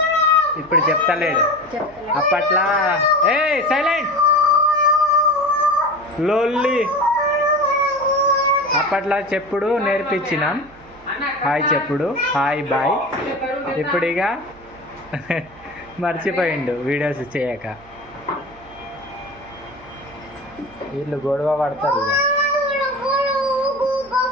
ఇప్పుడు చెప్తలేడు. అప్పట్లో ఏ సైలెంట్ లోల్లి అప్పట్లో చెప్పుడు నేర్పించినాం, హాయ్ చెప్పుడు, హాయ్ బాయ్. ఇప్పుడు ఇక మర్చిపోయిండు వీడియోస్ చేయక. వీళ్ళు గొడవ పడతారు ఇక.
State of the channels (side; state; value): right; noise; hum, 25 dB below the sound